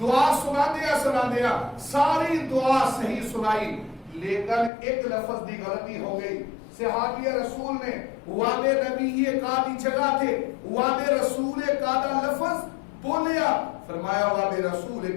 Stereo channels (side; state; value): right; drops out; at 4.7 s